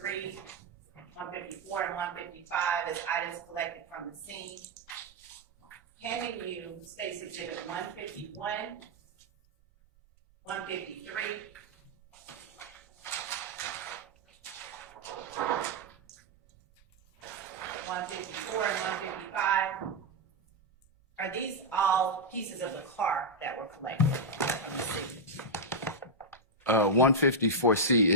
154, and 155 as items collected from the scene. Handing you State's Exhibit 151, 153, 154 and 155. Are these all pieces of the car that were collected from the scene? 154C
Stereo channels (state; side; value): normal; both; correlation -0.01